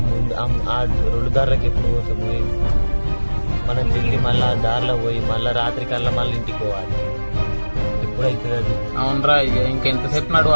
ఆ 2 దారులకు ఎప్పుడు పోతాము? మనం ఢిల్లీ మళ్ళీ ఆ దారిలో పోయి మళ్ళీ రాత్రి కల్లా మళ్ళీ ఇంటికి పోవాలి. ఎప్పుడైతుంది అది? అవునరా, ఇక ఇంకెంతసేపు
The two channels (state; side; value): inverted; both; correlation -1.00